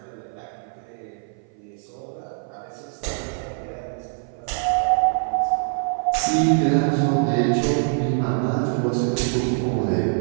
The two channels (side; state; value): left; silent; 56 dB below the other